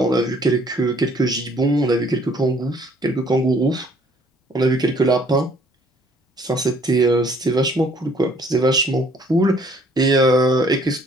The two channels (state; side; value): normal; both; correlation 0.61